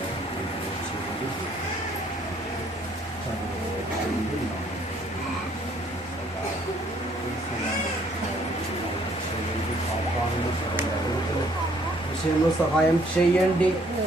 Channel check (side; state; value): both; normal; correlation 0.63